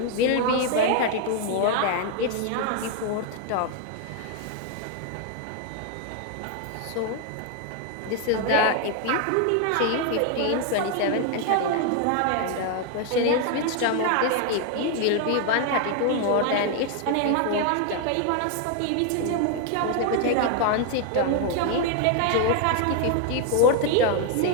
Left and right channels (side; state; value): both; different; correlation 0.00